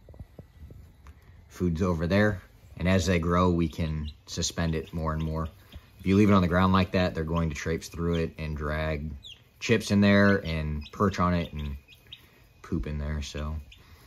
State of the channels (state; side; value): identical; both; correlation 1.00